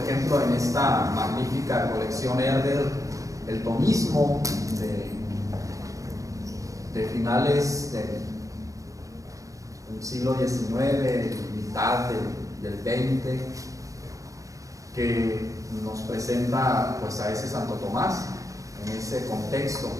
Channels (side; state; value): left; late; 0.16 ms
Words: en esta magnífica colección Herder, el tomismo de finales del siglo XIX, mitad del XX, que nos presenta pues a ese Santo Tomás en ese contexto.